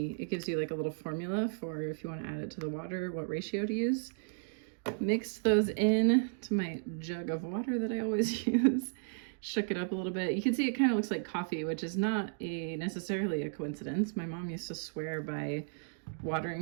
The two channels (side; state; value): left; silent; digital silence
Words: gives you like a little formula for if you want to add it to the water, what ratio to use. Mixed those in to my jug of water that I always use. Shook it up a little bit. You can see it kind of looks like coffee, which is not necessarily a coincidence. My mom used to swear by